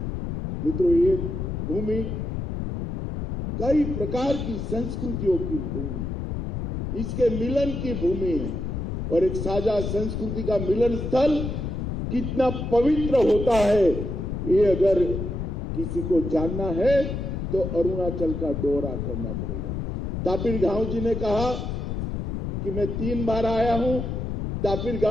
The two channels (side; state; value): left; noise; rumble, 4 dB below the sound